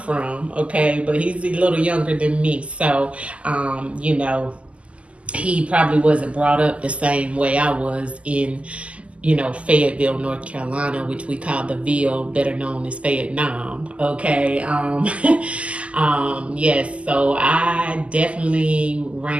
okay, but he's a little younger than me. So, he probably wasn't brought up the same way I was in Fayetteville, North Carolina, which we call the Ville, better known as Vietnam. Okay. Yes, so I definitely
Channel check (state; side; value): late; left; 0.060 ms